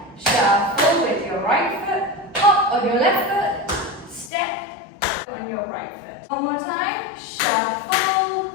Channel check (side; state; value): right; drops out; at 4.3 s